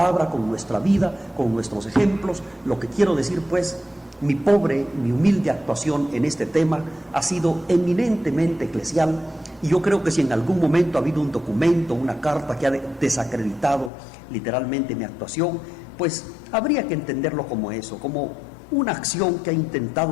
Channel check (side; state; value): right; drops out; at 13.9 s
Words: con nuestra vida, con nuestros ejemplos. Lo que quiero decir pues, mi humilde actuación en este tema ha sido eminentemente eclesial, y yo creo que si en algún momento ha habido un documento, una carta que ha desacreditado literalmente mi actuación, pues habría que entenderlo como eso, como una acción que ha